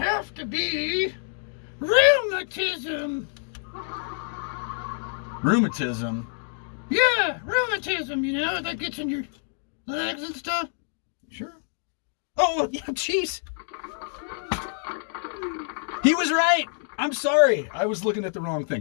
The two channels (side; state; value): right; silent; digital silence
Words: to be rheumatism. Rheumatism? Yeah, rheumatism, that gets in your legs and stuff. Sure. Oh, yeah, jeez. He was right. I'm sorry. I was looking at the wrong